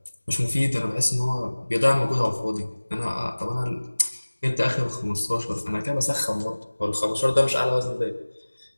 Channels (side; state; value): both; inverted; correlation -1.00